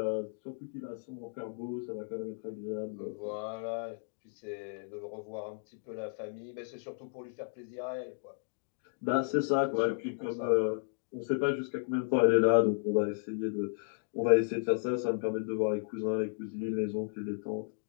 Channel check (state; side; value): silent; right; digital silence